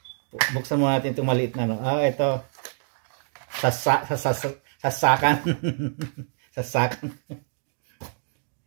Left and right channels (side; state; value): left; silent; digital silence